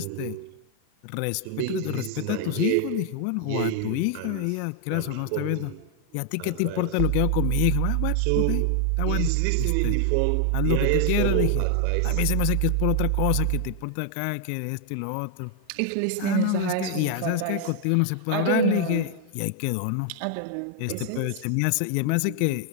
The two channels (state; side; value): different; both; correlation 0.00